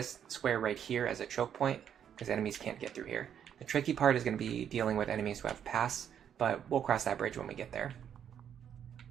square right here as a choke point, because enemies can't get through here. The tricky part is going to be dealing with enemies who have pass, but we'll cross that bridge when we get there.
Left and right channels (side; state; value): left; quieter; 8.9 dB